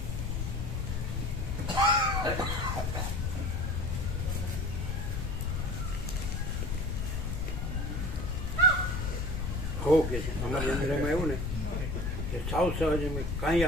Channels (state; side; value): noise; left; rumble, 2 dB below the sound